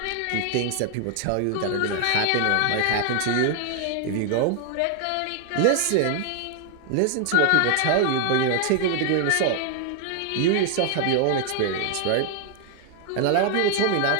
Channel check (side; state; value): both; different; correlation 0.00